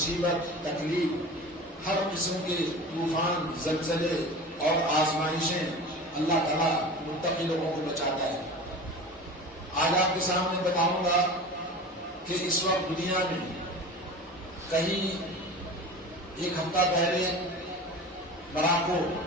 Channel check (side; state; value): both; normal; correlation 0.34